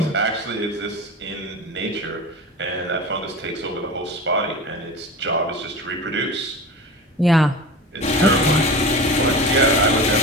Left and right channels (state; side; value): normal; both; correlation 0.31